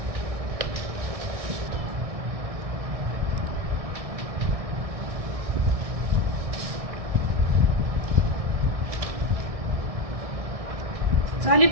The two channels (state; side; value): late; left; 1.6 ms